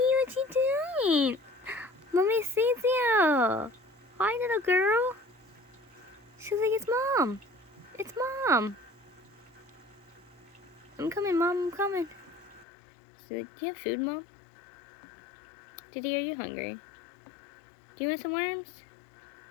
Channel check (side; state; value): right; drops out; at 12.7 s